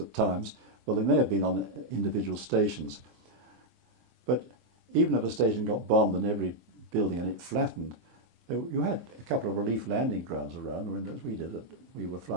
times. Well, they may have been on individual stations, but even if a station got bombed and every building in it flattened, you had a couple of relief landing grounds around. I mean, as we did, we were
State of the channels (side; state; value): left; late; 24 ms